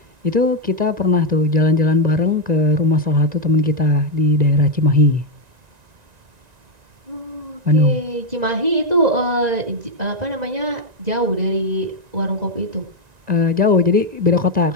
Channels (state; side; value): late; left; 1.9 ms